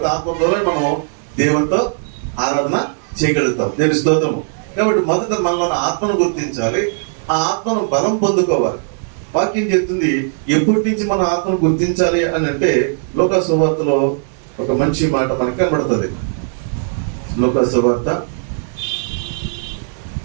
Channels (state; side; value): silent; left; 65 dB below the other